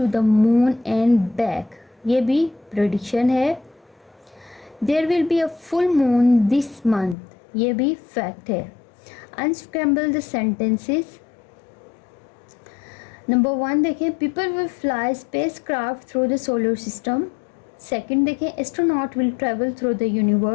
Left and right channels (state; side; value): drops out; right; at 7.2 s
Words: the moon and back, ये भी प्रेडिक्शन है। There will be a full moon this month, ये भी फैक्ट है। Unscramble the sentences. Number 1 देखें, people will fly spacecraft through the solar system. 2nd देखें, astronaut will travel through the